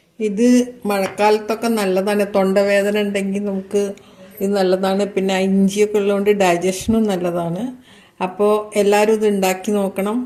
ഇത് മഴക്കാലത്തൊക്കെ നല്ലതാണ്. തൊണ്ടവേദന ഉണ്ടെങ്കിൽ നമുക്ക് ഇത് നല്ലതാണ്. പിന്നെ ഇഞ്ചിയൊക്കെ ഉള്ളതുകൊണ്ട് ഡൈജഷനും നല്ലതാണ്. അപ്പോൾ എല്ലാവരും ഇത് ഉണ്ടാക്കി നോക്കണം.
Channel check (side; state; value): both; identical; correlation 1.00